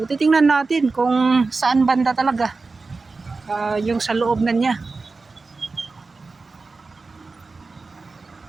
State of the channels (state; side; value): quieter; left; 4.0 dB